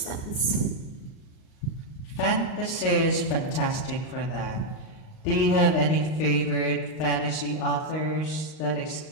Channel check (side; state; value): right; late; 38 ms